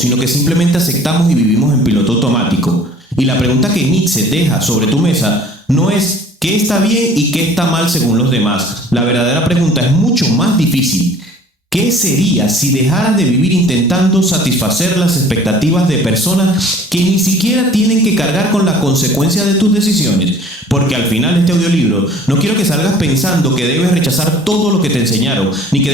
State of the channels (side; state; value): both; normal; correlation 0.50